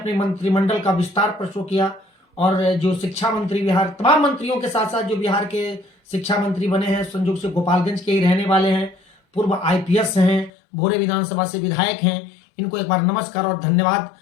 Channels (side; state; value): right; drops out; at 10.5 s